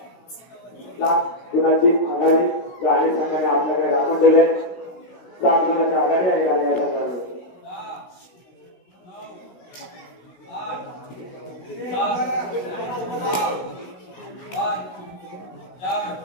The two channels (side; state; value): right; late; 16 ms